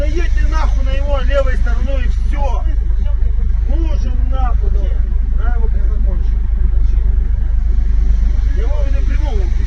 нахуй на его левой стороной и все. Слушаем нахуй. Да его закончим. Его не придумал.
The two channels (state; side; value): identical; both; correlation 1.00